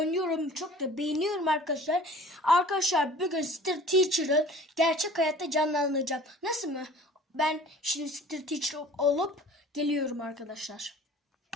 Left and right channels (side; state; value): both; normal; correlation 0.46